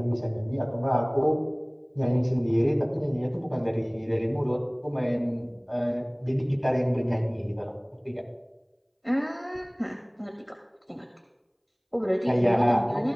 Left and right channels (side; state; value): both; identical; correlation 1.00